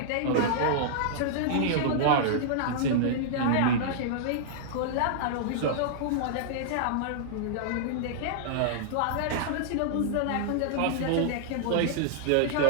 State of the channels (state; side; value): different; both; correlation -0.01